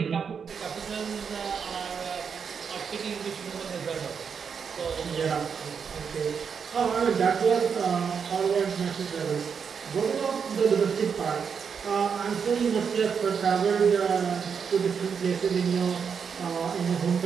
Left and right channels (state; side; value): quieter; left; 6.5 dB